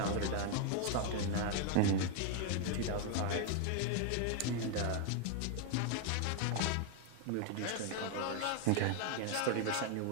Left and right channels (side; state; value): both; different; correlation 0.01